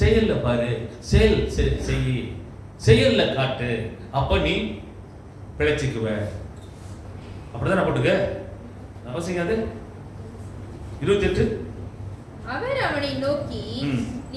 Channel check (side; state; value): both; identical; correlation 1.00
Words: பாரு, செயல்ல காட்டு, அப்ப நீ பிழைச்சிக்குவ. அப்படிதான் போட்டுக்க அவசியம். அது 28. அவர் அவனை நோக்கி